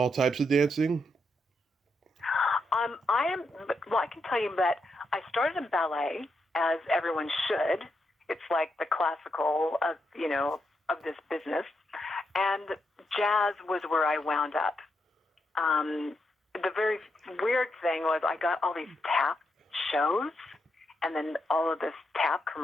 types of dancing? I am. Well, I can tell you that I started in ballet, as everyone should. It's like the classical of of this business, and jazz was where I wound up. The very weird thing was I got all these tap shows, and then all of this tap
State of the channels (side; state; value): both; normal; correlation 0.82